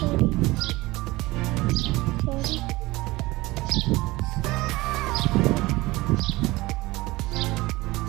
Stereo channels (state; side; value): quieter; left; 20.4 dB